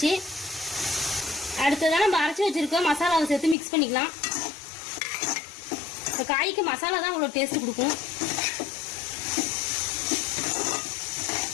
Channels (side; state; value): right; drops out; at 3.6 s